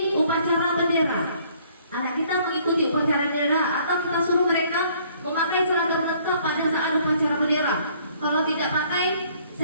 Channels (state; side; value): inverted; both; correlation -0.60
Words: upacara bendera. Anak kita mengikuti upacara bendera, atau kita suruh mereka memakai seragam lengkap pada saat upacara bendera. Kalau tidak pakai,